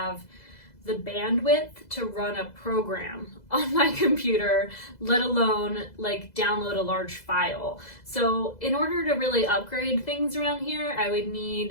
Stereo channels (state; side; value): late; right; 2.0 ms